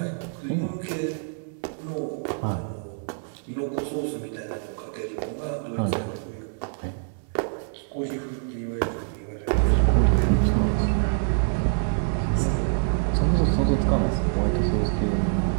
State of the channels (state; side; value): silent; left; 61 dB below the other